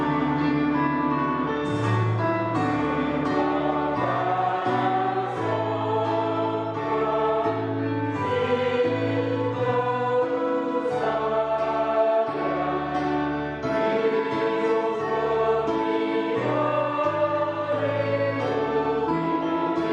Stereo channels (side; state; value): both; identical; correlation 1.00